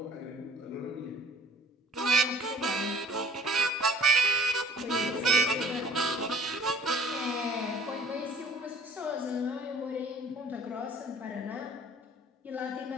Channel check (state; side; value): normal; both; correlation 0.50